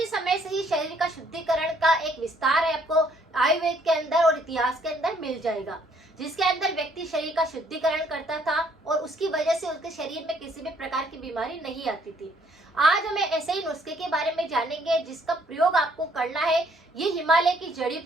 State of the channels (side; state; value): both; normal; correlation 0.65